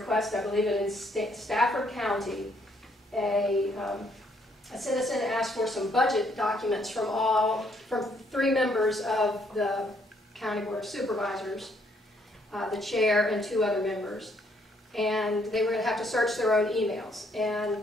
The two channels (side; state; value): both; normal; correlation 0.69